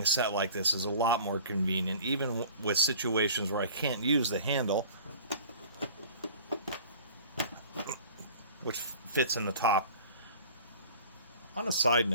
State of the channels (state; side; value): inverted; both; correlation -0.43